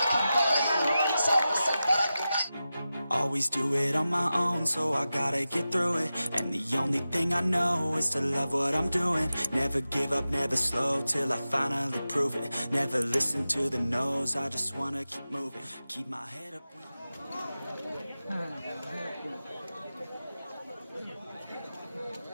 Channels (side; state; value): both; inverted; correlation -0.93